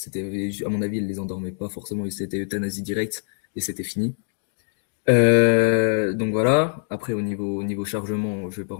à mon avis, elles les endormaient pas forcément, et c'était euthanasie directe et c'était fini. Donc voilà. Après au niveau chargement, je vais pas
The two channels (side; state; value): right; silent; digital silence